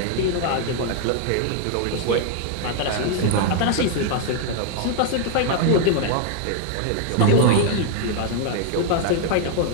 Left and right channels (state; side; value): different; both; correlation 0.00